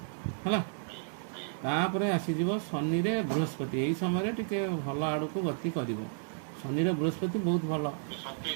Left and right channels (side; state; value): left; silent; 56 dB below the other